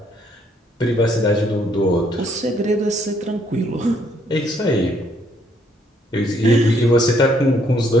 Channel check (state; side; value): normal; both; correlation 0.68